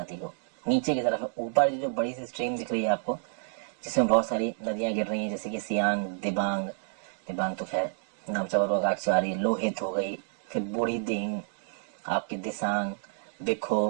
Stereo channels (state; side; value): silent; left; digital silence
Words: को। नीचे की तरफ ऊपर जो बड़ी सी स्ट्रीम दिख रही है आपको, जिसमें बहुत सारी नदियां गिर रही हैं, जैसे कि सियांग, दिबांग, दिबांग तो खैर नामचा बरुआ घाट से आ रही है, लोहित हो गई, फिर बूढ़ी दिंग, आपकी दिसांग,